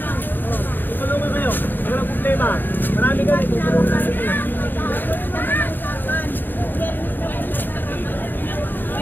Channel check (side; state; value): right; late; 0.092 ms